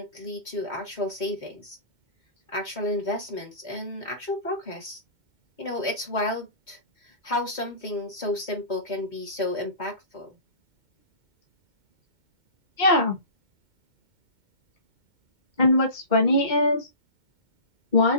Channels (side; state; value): left; late; 2.2 ms